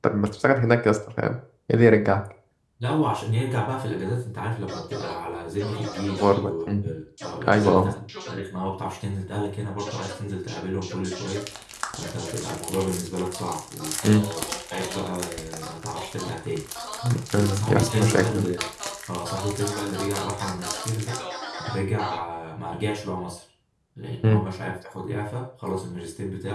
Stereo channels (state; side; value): identical; both; correlation 1.00